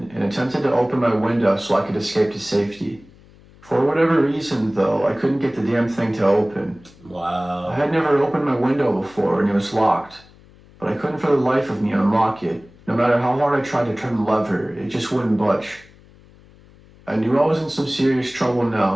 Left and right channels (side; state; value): left; noise; hum, 25 dB below the sound